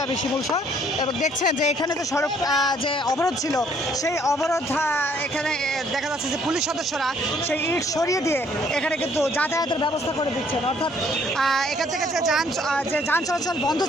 আমি শিমুল শাহ এবং দেখছেন যে এখানে যে সড়ক যে অবরোধ ছিল সেই অবরোধ এখানে দেখা যাচ্ছে যে পুলিশ সদস্যরা সেই ইট সরিয়ে দিয়ে এখানে কিন্তু যাতায়াতের ব্যবস্থা করে দিচ্ছেন অর্থাৎ এখান থেকে যে যান চলাচল বন্ধ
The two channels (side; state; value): both; normal; correlation 0.63